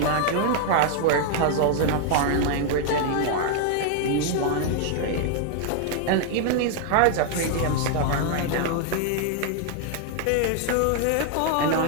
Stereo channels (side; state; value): both; different; correlation 0.00